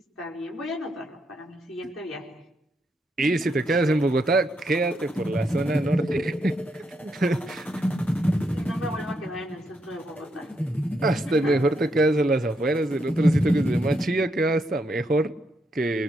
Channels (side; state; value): both; normal; correlation 0.79